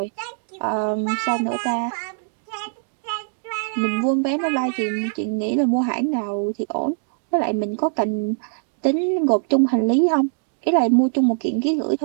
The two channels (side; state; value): left; silent; digital silence